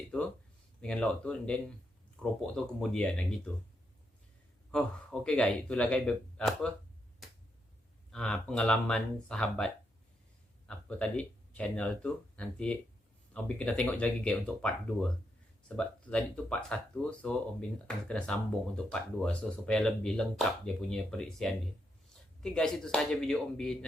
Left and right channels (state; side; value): normal; both; correlation 0.81